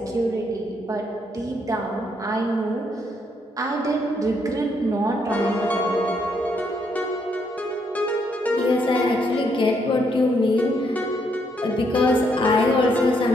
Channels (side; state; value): both; normal; correlation 0.74